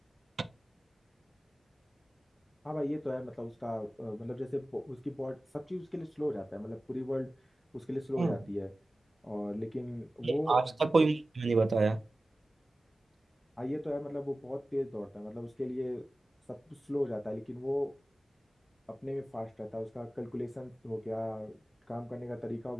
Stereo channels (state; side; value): normal; both; correlation 0.96